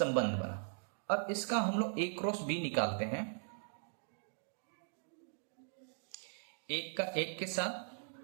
बना। अब इसका हम लोग a क्रॉस b निकालते हैं, एक का 1 के साथ,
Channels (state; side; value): silent; left; digital silence